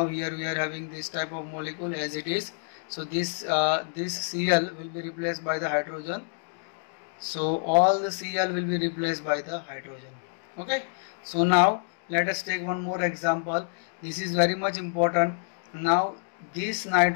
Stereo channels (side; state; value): right; silent; digital silence